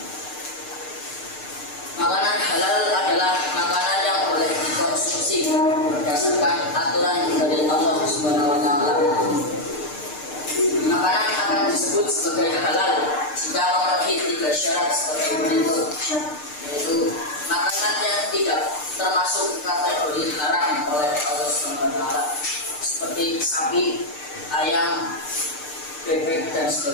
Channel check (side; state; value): right; late; 6.6 ms